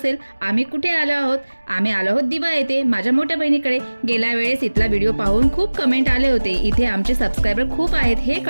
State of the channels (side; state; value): both; inverted; correlation -1.00